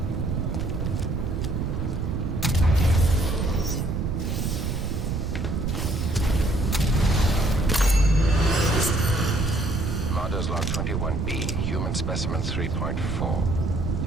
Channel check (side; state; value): right; noise; rumble, 1 dB below the sound